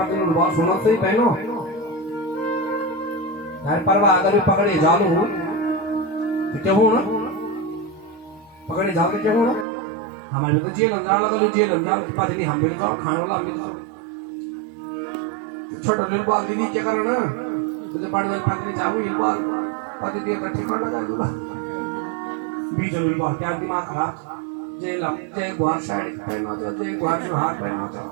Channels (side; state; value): left; drops out; at 9.7 s